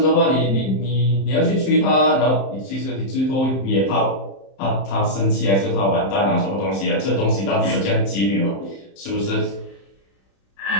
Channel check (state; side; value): late; right; 31 ms